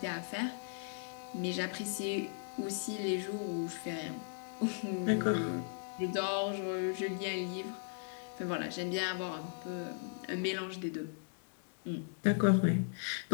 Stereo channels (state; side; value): silent; right; digital silence